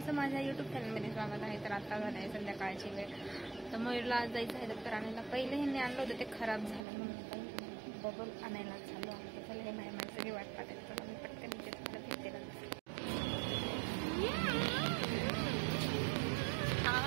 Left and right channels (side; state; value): left; drops out; at 6.8 s